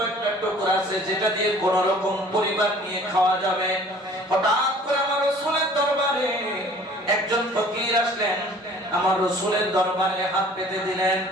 একটা টুকরা আছে যেটা দিয়ে কোন রকম পরিবার নিয়ে খাওয়া যাবে। হঠাৎ করে আমার রাসূলের দরবারে একজন ফকির আসলেন, আমার রাসূলের দরবারে হাত পেতে দিলেন।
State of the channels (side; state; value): both; normal; correlation 0.51